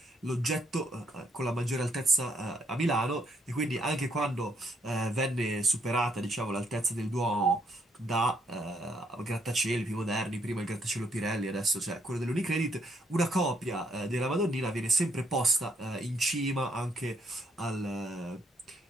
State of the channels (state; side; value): normal; both; correlation 0.71